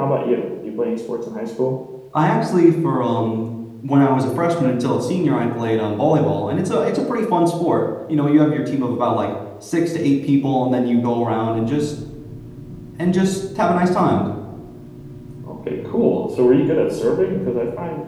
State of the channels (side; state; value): both; identical; correlation 1.00